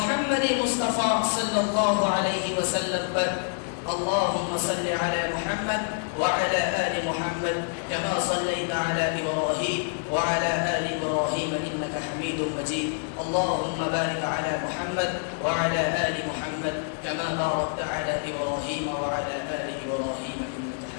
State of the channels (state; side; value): silent; right; digital silence